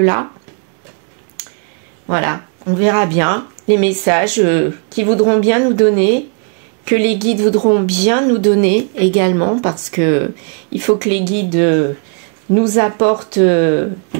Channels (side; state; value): left; quieter; 39.2 dB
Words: voilà, on verra bien les messages qui voudront bien nous donner, que les guides voudront bien nous donner également, parce que il faut que les guides nous apportent